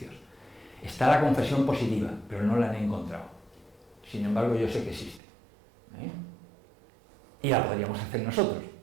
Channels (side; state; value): left; drops out; at 5.2 s